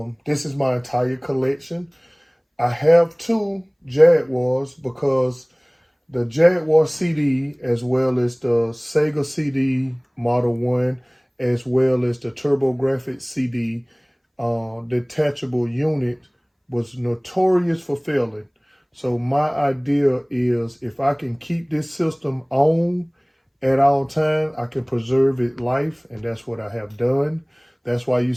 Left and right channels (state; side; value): identical; both; correlation 1.00